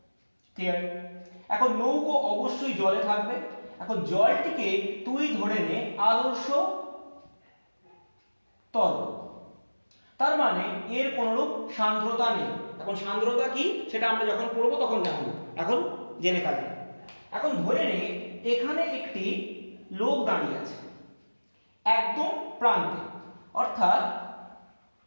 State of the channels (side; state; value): both; inverted; correlation -1.00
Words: ক্লিয়ার? এখন নৌকো অবশ্যই জলে থাকবে, এখন জলটিকে তুই ধরে নে আদর্শ তরল, তার মানে এর কোনরূপ সান্দ্রতা নেই। এখন সান্দ্রতা কি সেটা আমরা যখন পড়বো তখন জানবো, এখন জেনে কাজে। এখন ধরে নে এখানে একটি লোক দাঁড়িয়ে আছে একদম প্রান্তে, অর্থাৎ